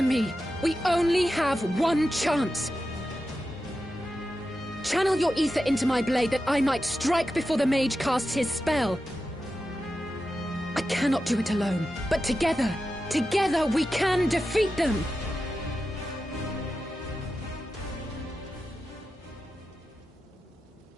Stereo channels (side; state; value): both; normal; correlation 0.91